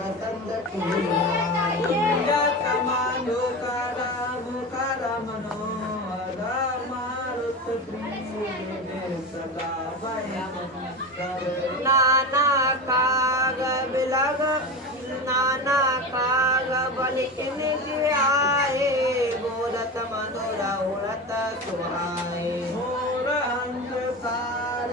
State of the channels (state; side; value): normal; both; correlation 0.24